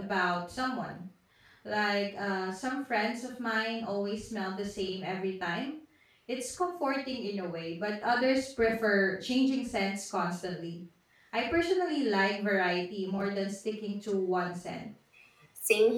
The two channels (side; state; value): both; identical; correlation 1.00